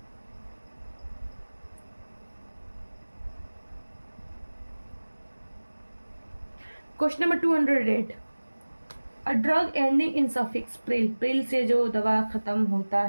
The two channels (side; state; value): both; inverted; correlation -1.00